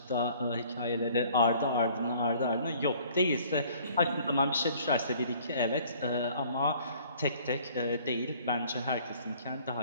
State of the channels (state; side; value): inverted; both; correlation -0.55